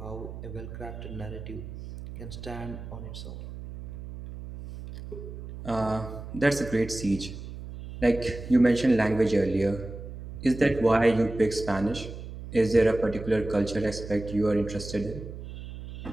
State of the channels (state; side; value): noise; right; hum, 11 dB below the sound